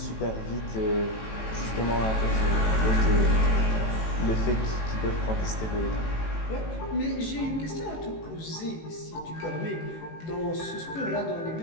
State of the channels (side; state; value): right; late; 18 ms